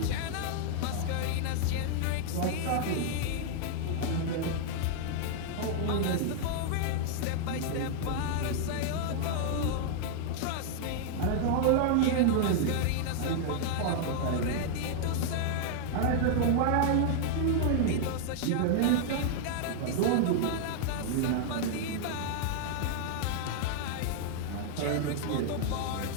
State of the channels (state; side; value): different; both; correlation -0.01